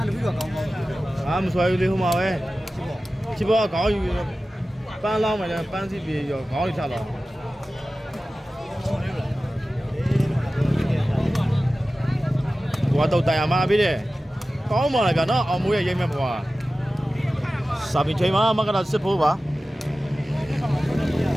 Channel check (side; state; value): both; normal; correlation 0.95